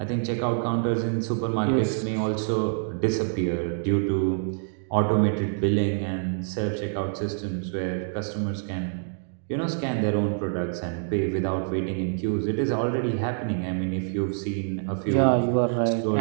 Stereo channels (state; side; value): silent; left; digital silence